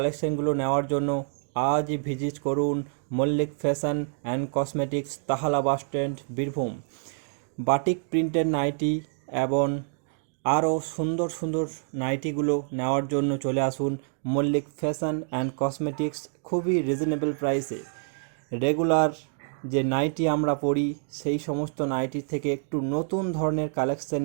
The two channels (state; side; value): silent; left; 58 dB below the other